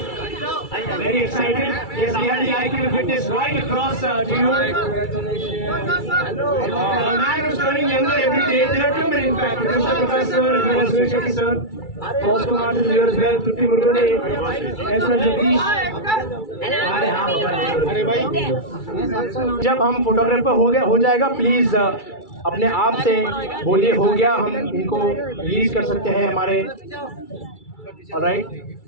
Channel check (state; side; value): late; right; 2.3 ms